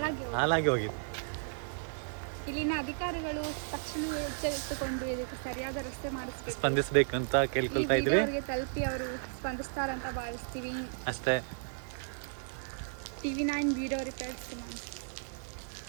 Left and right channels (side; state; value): left; silent; 55 dB below the other